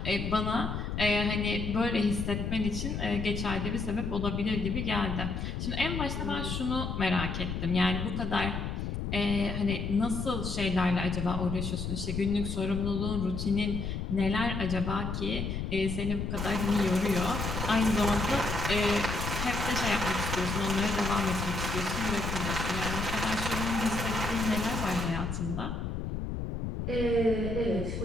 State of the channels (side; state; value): left; noise; rumble, 3 dB below the sound